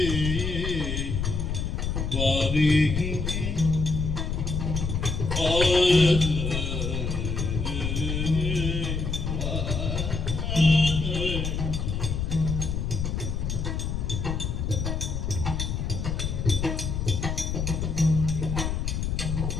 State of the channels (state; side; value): noise; left; rumble, 2 dB below the sound